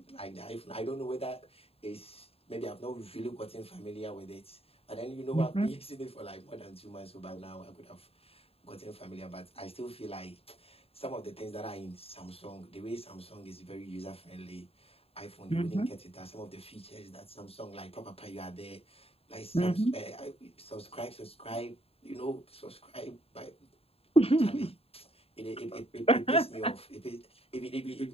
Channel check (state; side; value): late; right; 0.28 ms